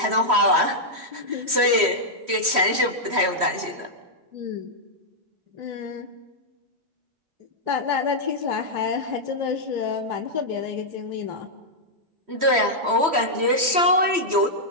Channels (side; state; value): left; late; 3.1 ms